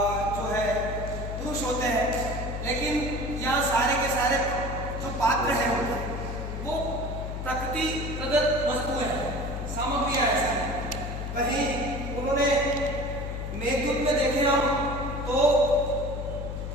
जो है पुरुष होते हैं, लेकिन यहाँ सारे के सारे जो पात्र हैं वो प्रकृति प्रदत्त वस्तुएं हैं, सामग्रियां हैं। वहीं उन्होंने मेघदूत में देखे हम तो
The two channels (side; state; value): left; noise; hum, 5 dB below the sound